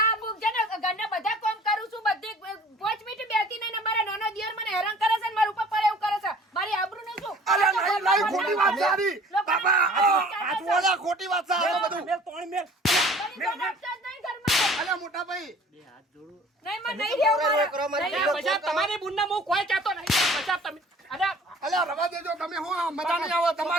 અમુક છે ને ઘરના બધા કામ કરું છું બધે 5 મિનિટ બેસતી નહીં ને મારા નાનો દિયર મને હેરાન કરે છે ને મારા ઉપર પડે એવું કરે છે મારી આબરૂનું શું અલ્યા નહીં નહીં ખોટી વાત છે આની લોકોને બાબા આ જોડા ખોટી વાત છે આ બધું મેલ તોણ મેલ ઘણી જણ આપતા જ નહીં ઘરમાં. અલ્યા મોટા ભાઈ બે હાથ જોડું નહીં, મને નહીં રહેવું મારે. કરો, મારી નહીં એ રહેવું. બજાર તમારી બુનને હું કોઈ કહેતો નહીં બજાર તમે અરે અલ્યા રવા દેજો તમે હું આ મજા નહીં આવે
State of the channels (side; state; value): both; normal; correlation 0.50